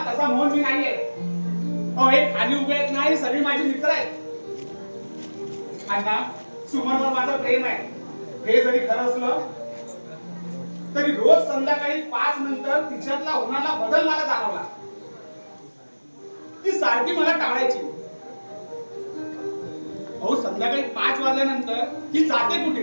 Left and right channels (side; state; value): both; inverted; correlation -1.00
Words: तसा मोहन मी नाही आहे. अहो हे खाली उभे आहेत ना, हे सगळी माझी मित्र आहेत. अण्णा सुमनवर माझं प्रेम आहे. हे जरी खरं असलं तरी रोज संध्याकाळी 5 नंतर तिच्यातला होणारा बदल मला जाणवला. ती सारखी मला टाळायची. अहो संध्याकाळी 5 वाजल्यानंतर ती जाते कुठे?